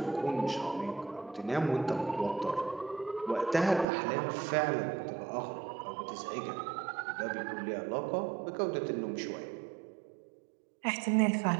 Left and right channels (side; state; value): left; drops out; at 3.9 s